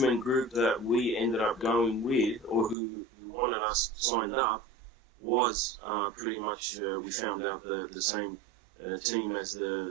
group that we ended up going with, or who wanted us signed up, was pretty much, we found out, the same team as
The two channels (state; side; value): drops out; left; at 2.8 s